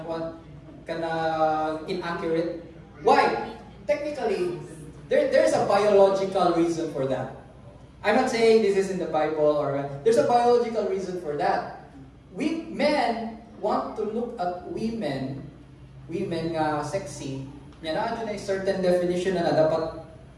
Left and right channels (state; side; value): identical; both; correlation 1.00